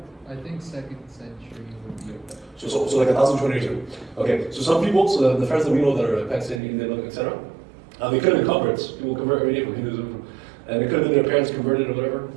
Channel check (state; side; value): drops out; left; at 6.6 s